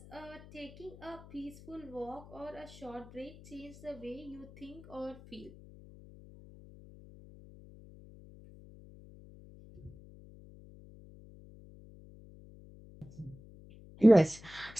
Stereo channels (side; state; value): left; noise; hum, 19 dB below the sound